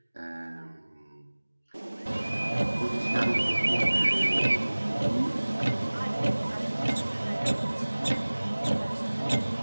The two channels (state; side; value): inverted; both; correlation -1.00